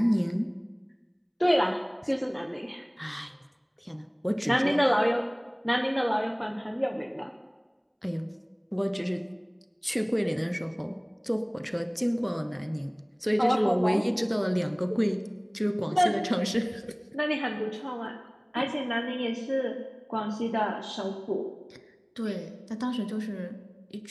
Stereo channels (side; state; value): both; identical; correlation 1.00